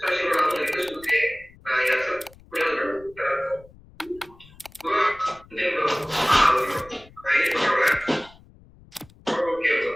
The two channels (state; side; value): noise; left; rumble, 25 dB below the sound